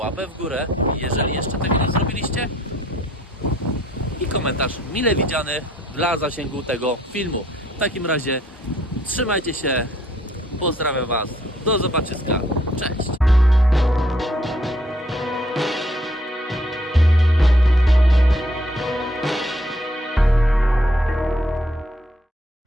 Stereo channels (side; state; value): both; normal; correlation 0.65